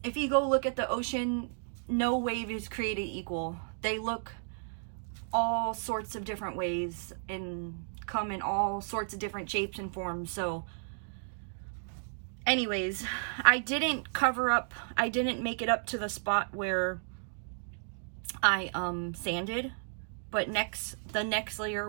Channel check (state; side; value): silent; left; digital silence